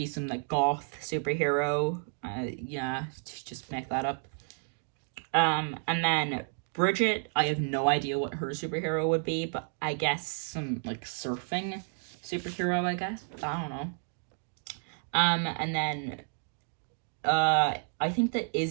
some, like, goth superhero, yeah, just make that up. And then Bridgette, I have no idea what her superhero would be, but I guess some, like, surfing superhero, I guess. I don't know. And then, I think that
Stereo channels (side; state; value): left; silent; 57 dB below the other